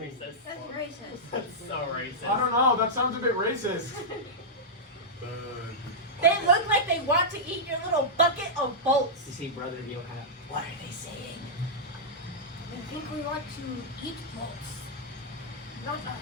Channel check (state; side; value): normal; both; correlation -0.10